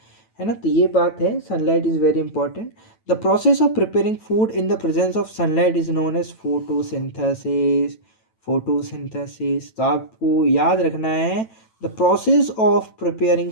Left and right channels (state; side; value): late; right; 9.0 ms